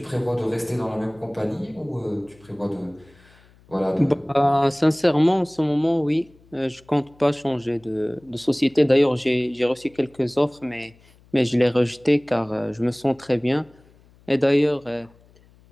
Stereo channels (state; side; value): noise; left; hum, 29 dB below the sound